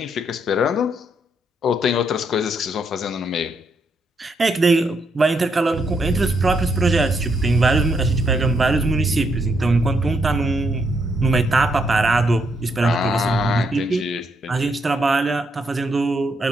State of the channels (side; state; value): both; normal; correlation 0.76